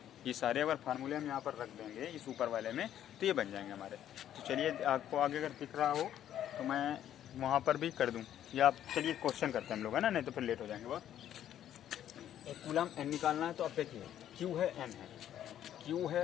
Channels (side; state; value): right; quieter; 11.0 dB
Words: ये सारे अगर फार्मूले हम यहाँ पर रख देंगे इस ऊपर वाले में तो ये बन जाएंगे हमारे। तो चलिए आपको आगे अगर दिख रहा हो तो मैं वहाँ पर भी कर दूँ, या आप चलिए क्वेश्चन करते हैं हम लोग, है ना, नहीं तो फिर लेट हो जाएंगे बहुत। एक कूलम N निकालना है, तो अब देखिए Q है N है, Q